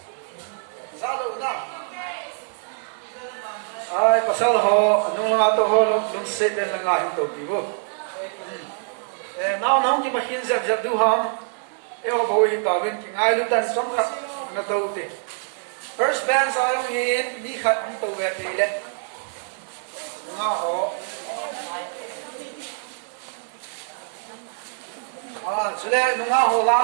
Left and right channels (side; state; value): left; silent; 59 dB below the other